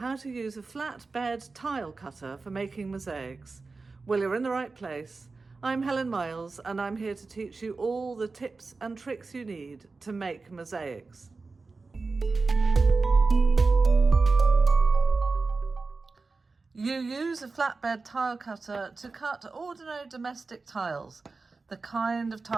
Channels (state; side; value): quieter; left; 4.0 dB